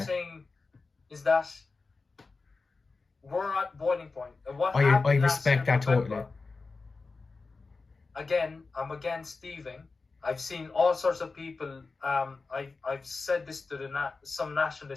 saying is that we're at boiling point. And what I happened last respect year, that totally. November, again, I'm against thieving. I've seen all sorts of people. I've said this to some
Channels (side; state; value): right; quieter; 4.0 dB